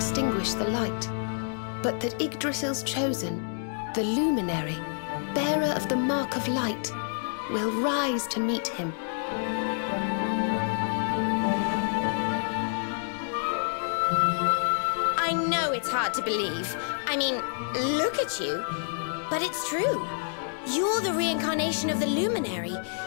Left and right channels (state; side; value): silent; right; digital silence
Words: the light, but that Yggdrasil's chosen, the Luminary, bearer of the mark of light, will rise to meet him. I know it's hard to believe. I mean, look at you. But it's true. You're the reincarnation of the Luminary,